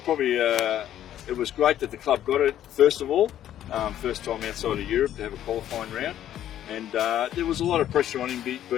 it was great that the club got it first of all, first time outside of Europe to have a qualifying round, and there was a lot of pressure on him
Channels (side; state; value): right; quieter; 11.5 dB